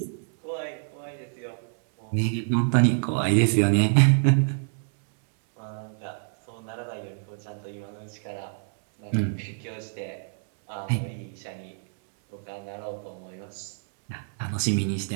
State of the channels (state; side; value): silent; left; 60 dB below the other